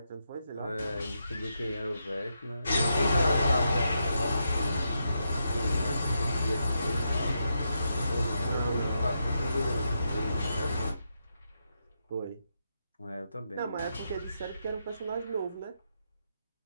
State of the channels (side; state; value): both; inverted; correlation -0.83